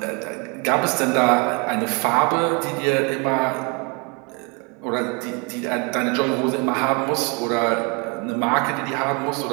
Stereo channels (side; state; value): left; quieter; 31.0 dB